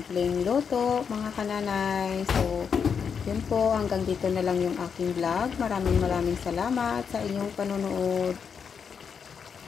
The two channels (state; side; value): quieter; right; 6.6 dB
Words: luto, mga kananay. So, yun po. Hanggang dito na lang yung aking vlog. Maraming salamat sa inyong panonood.